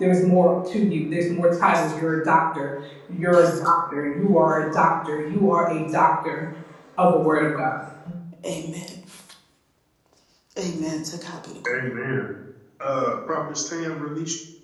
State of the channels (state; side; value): identical; both; correlation 1.00